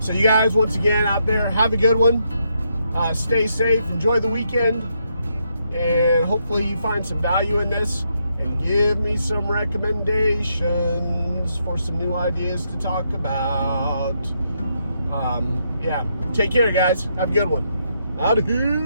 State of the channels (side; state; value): both; inverted; correlation -0.78